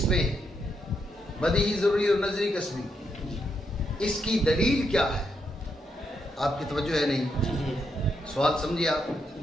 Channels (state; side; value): normal; both; correlation 0.80